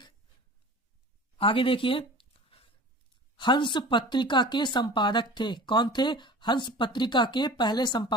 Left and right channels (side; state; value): both; normal; correlation 0.40